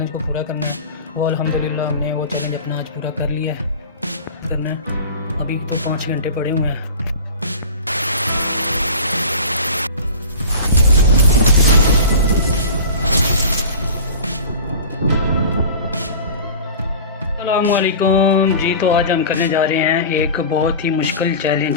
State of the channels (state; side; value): inverted; both; correlation -0.36